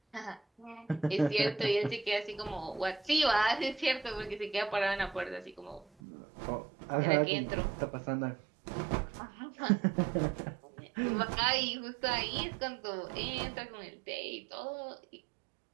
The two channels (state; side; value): drops out; left; at 5.9 s